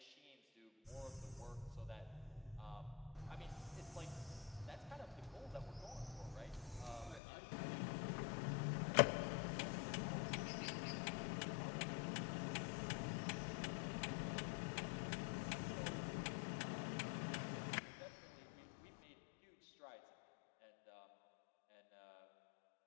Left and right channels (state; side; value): drops out; right; at 7.2 s